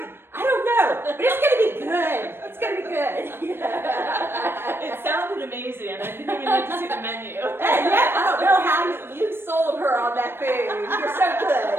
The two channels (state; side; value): late; left; 0.11 ms